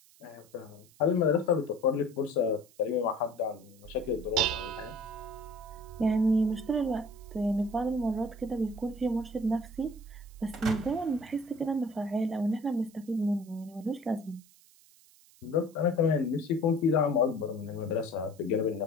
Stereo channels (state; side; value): noise; right; hiss, 27 dB below the sound